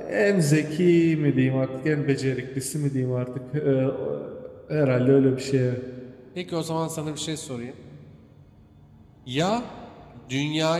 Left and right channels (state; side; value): identical; both; correlation 1.00